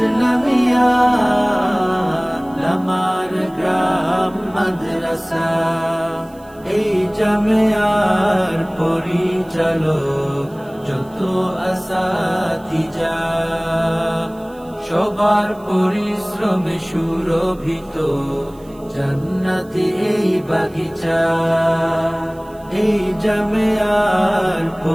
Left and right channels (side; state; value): right; noise; hiss, 28 dB below the sound